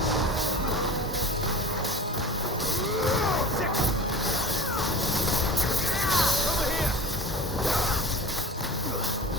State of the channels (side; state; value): both; normal; correlation 0.38